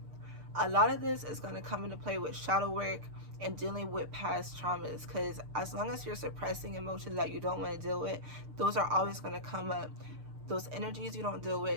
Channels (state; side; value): late; left; 6.7 ms